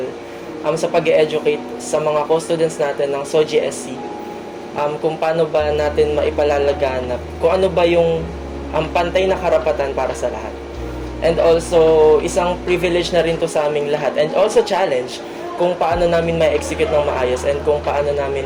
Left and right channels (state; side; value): identical; both; correlation 1.00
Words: sa pag-educate sa mga co-students natin ng SOGSC, kung paano ba natin maipalalaganap, kung ano ba yung pantay na karapatan para sa lahat. And also, isang privilege na rin to sa aming lahat. And also challenge kung paano namin ma-execute ng maayos and kung paano namin